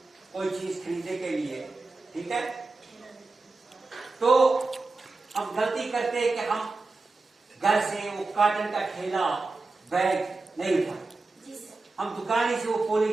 कोई चीज खरीदने के लिए, ठीक है, तो हम गलती करते हैं कि हम घर से वो कॉटन का थैला बैग नहीं उठाते, हम दुकान से वो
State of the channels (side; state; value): left; quieter; 3.6 dB